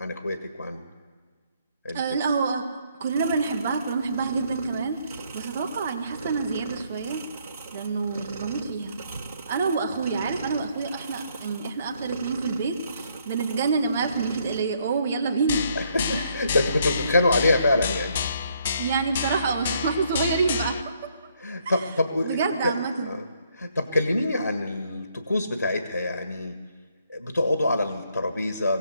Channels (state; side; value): inverted; both; correlation -0.70